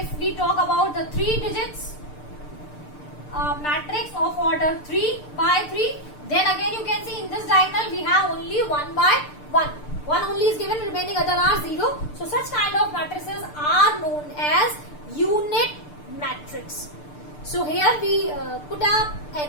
we talk about the 3 digits matrix of order 3 by 3, then again you can see in this diagonal we have only 1 by 1. 1 only is given, remaining other are 0. So such kind of matrices are known as unit matrix. So here we put up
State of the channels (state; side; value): late; right; 6.7 ms